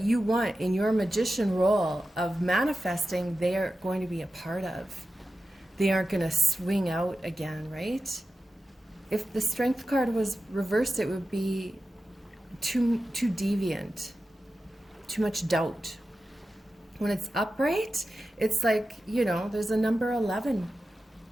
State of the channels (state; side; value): normal; both; correlation 0.93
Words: want in your magician role of manifesting, they are going to be a part of. They aren't going to swing out again, right? If the Strength card was reversed, it would be too deviant, too much doubt. When it's upright, it's like, you know, there's a number 11